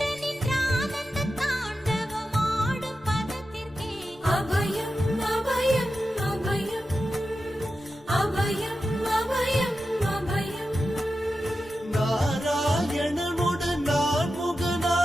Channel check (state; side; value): normal; both; correlation 0.91